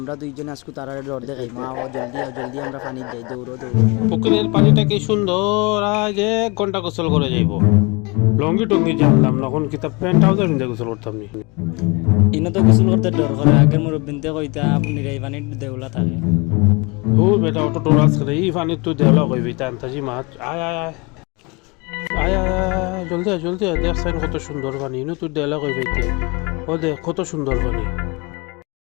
দুইজনে আজকে তারা ডর দেখাই মা ও জলদি আমরা পানি যাই দৌড়ো পুকুরের পানিটা কি সুন্দর, আজ 1 ঘন্টা গোসল করে যাইব। লঙ্গি টঙ্গি জানলাম না, এখন কিতাব প্যান্ট ট্রাউজার নিয়ে গোসল করতাম নি। ইনো তো গোসল করতে ডর করে আগের মুরব্বিনতে কইতা আপনি এই পানির দেউলা থাকে ও বেটা অটো টোরাস করে এই পানি তুই দেওয়া কইবি তান্তাজি মাছ আয় আয় আয় আয় আয় জলদি আয় দেখ সাইন কত সুন্দর পানি, ইনো তুই দেওয়া কইবি ও দেখ কত সুন্দর পানি।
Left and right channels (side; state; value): right; quieter; 28.1 dB